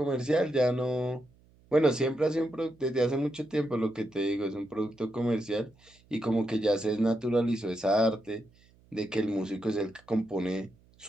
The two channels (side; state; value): right; noise; hum, 30 dB below the sound